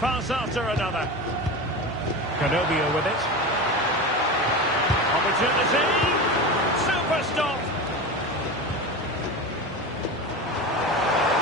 after another. Carobio with it. Opportunity. Super stop.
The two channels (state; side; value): normal; both; correlation 0.25